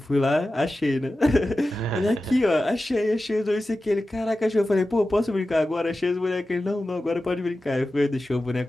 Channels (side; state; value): both; normal; correlation 0.94